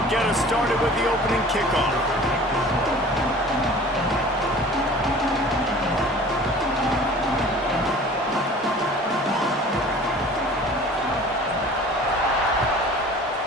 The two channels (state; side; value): normal; both; correlation 0.45